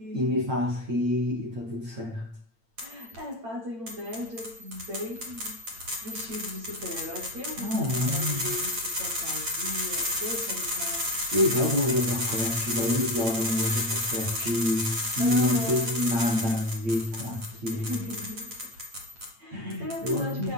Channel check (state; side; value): late; left; 8.8 ms